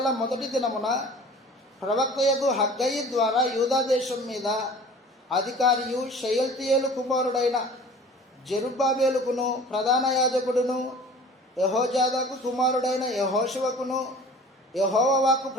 1వ దినమున ప్రవక్తయగు హగ్గయి ద్వారా యూదా దేశం మీద అధికారియు షయల్తీయేలు కుమారుడైన జెరుబ్బాబెలుకును ప్రధాన యాజకుడును యెహోజాదాకు కుమారుడైన యెహోషువకును యెహోవా వాక్కు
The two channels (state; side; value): normal; both; correlation 0.44